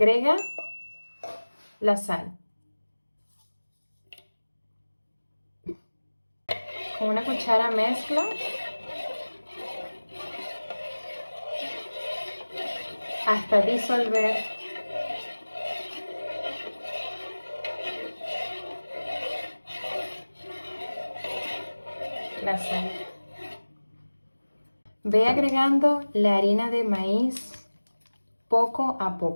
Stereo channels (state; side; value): inverted; both; correlation -1.00